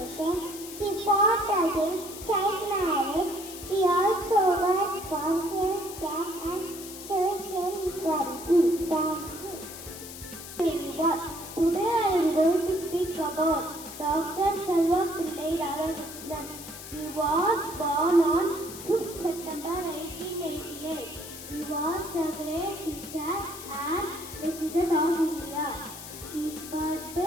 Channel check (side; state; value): left; noise; hiss, 12 dB below the sound